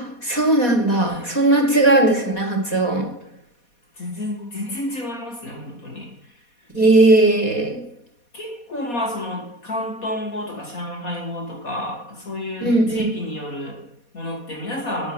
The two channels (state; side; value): late; right; 4.2 ms